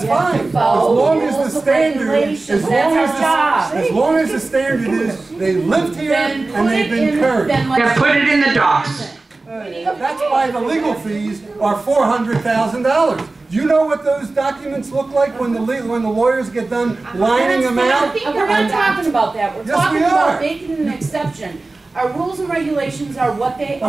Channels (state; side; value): quieter; left; 3.4 dB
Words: You have to fine. follow As long as rules the of standard, regulations. as long That's as our job. as long as the standard is they lived here Then and they've been current. Yeah, put it in the docs. That's why the legal fees are $400,000. Do you know what those documents look like when the lawyers get done lining them out? We're not talking about that. We're Yes, talking we are. about making an exception. Our rules and regulations are what they are.